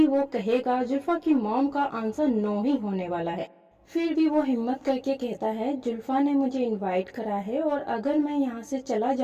वो कहेगा जुल्फा की मॉम का आंसर नो ही होने वाला है। फिर भी वो हिम्मत करके कहता है जुल्फा ने मुझे इनवाइट करा है और अगर मैं यहाँ से चला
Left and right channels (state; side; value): identical; both; correlation 1.00